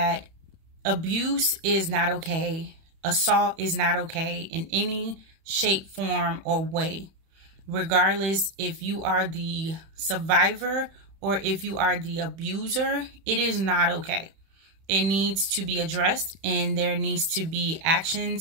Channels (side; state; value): left; late; 31 ms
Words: abuse is not okay. Assault is not okay in any shape, form, or way. Regardless if you are the survivor or if you are the abuser, it is not okay. It needs to be addressed, and there needs to be